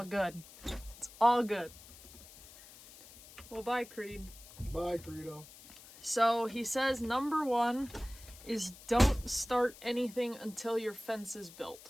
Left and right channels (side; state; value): left; noise; hiss, 19 dB below the sound